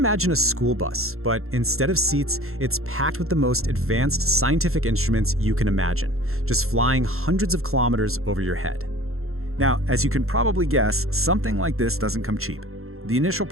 a school bus, but instead of seats, it's packed with the most advanced scientific instruments you can imagine, just flying hundreds of kilometers over your head. Now, as you can probably guess, something like this doesn't come cheap. The initial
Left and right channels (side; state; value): left; late; 0.62 ms